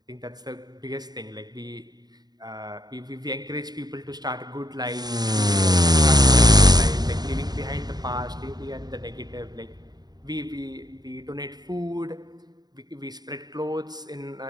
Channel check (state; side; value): late; left; 0.19 ms